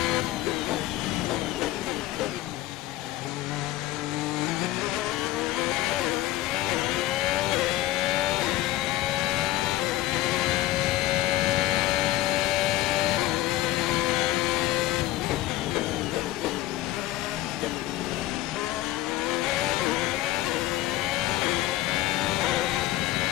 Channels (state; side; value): quieter; right; 16.0 dB